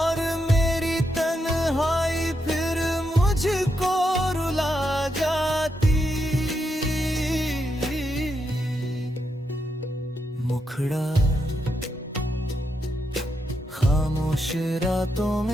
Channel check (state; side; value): normal; both; correlation 0.82